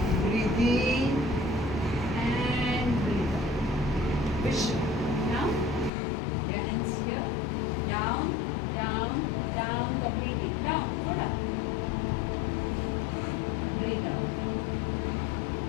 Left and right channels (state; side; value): drops out; right; at 5.9 s